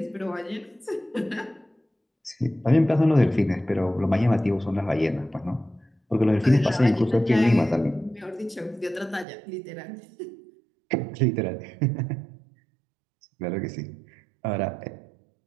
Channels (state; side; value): drops out; left; at 9.2 s